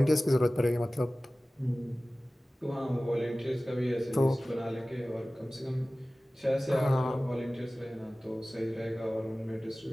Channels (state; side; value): normal; both; correlation 0.97